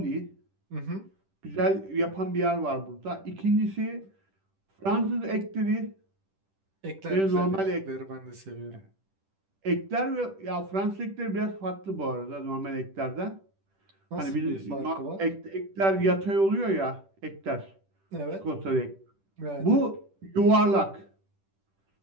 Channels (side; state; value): left; late; 10 ms